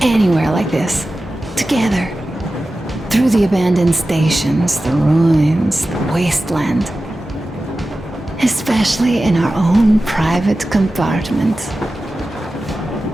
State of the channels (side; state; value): both; normal; correlation 0.94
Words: like this, together, through the abandoned stations, the ruins, the wasteland. Especially in our own private compartment.